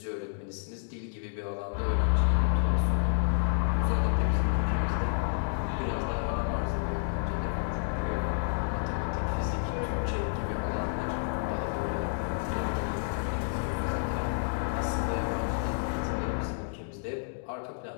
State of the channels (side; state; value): right; silent; digital silence